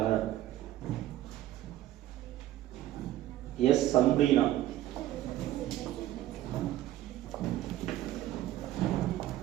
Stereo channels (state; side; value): quieter; left; 13.8 dB